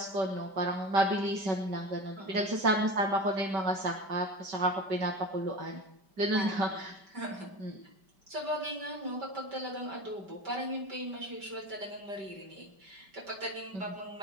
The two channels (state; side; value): late; left; 5.1 ms